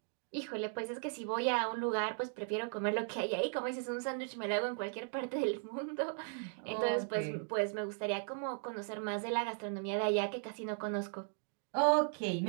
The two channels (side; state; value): left; silent; 53 dB below the other